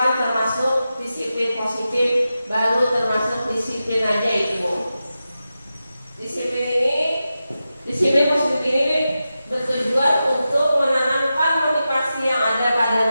termasuk disiplin positif, baru termasuk disiplin aja itu. Disiplin positif ini bertujuan untuk menanamkan motivasi yang ada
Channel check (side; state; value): both; inverted; correlation -0.91